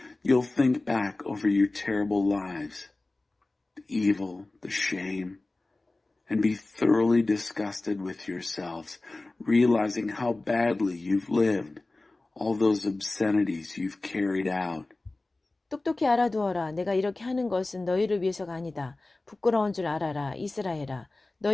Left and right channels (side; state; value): right; quieter; 3.0 dB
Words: you'll think back over your terrible lives, the evil, the shame, and be thoroughly disgusted with yourselves, realizing how badly you've lived, all those obscenities you've carried out. 똑똑히 알아두어라. 내가 이렇게 하는 것은 너희를 위해서가 아니다. 부끄러운 줄 알아라. 이스라엘아.